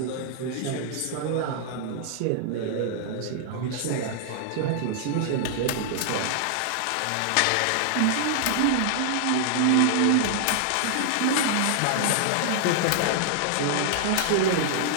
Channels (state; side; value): different; both; correlation -0.01